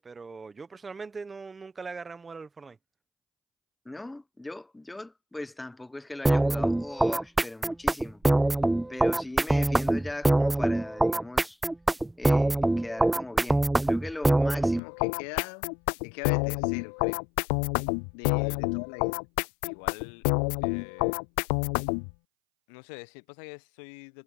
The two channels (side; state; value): right; drops out; at 14.8 s